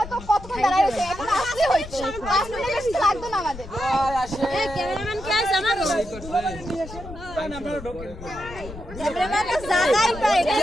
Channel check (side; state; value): left; noise; rumble, 13 dB below the sound